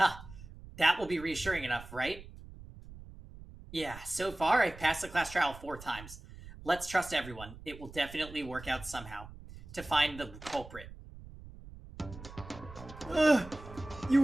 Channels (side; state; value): right; noise; rumble, 16 dB below the sound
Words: That will be reassuring enough, right? Yeah, so far I've passed the class trial 4 times. Let's trust everyone. It will definitely work out somehow. To find the culprit. You